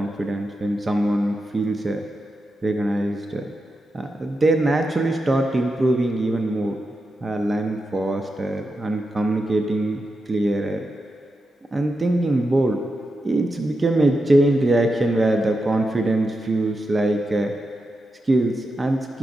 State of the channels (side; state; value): both; normal; correlation 0.88